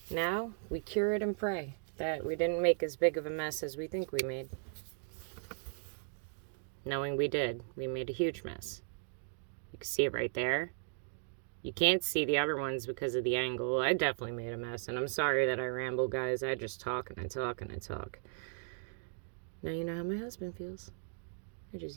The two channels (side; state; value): left; silent; digital silence